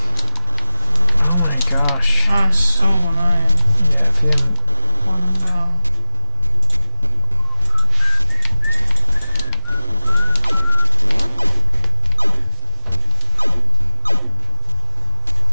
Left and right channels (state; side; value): inverted; both; correlation -0.75